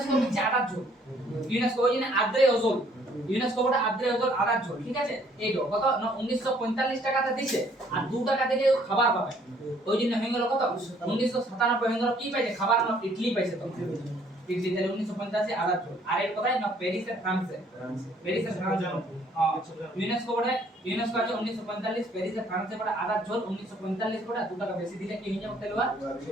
হচ্ছে আদার জোন ইউনেস্কো ওই জন্য আদ্রে ওজোন ইউনেস্কো বড় আদ্রে ওজোন আদার জোন ঠিক আছে এই তো কত 1945 টাকাতে দিছে আর 2 টাকা দিলে খাবার পাবে ওই জন্য হয়ে গেল কত 1997 হয়ে গেল কি পাইছে খাবার না ইডলি পাইছে তো ইডলি তাহলে 1985 আদার জোন আর এর কথাই না প্যারিস আর ফ্রান্সে ফ্রান্স ইউনেস্কো বড় ইউনেস্কো আছে 1945 প্যারিস আর ফ্রান্সে বড় আদার জোন 1945 বড় 2 টাকা বেশি দিলে কি হয়ে যাবে তেলবা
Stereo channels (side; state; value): both; normal; correlation 0.62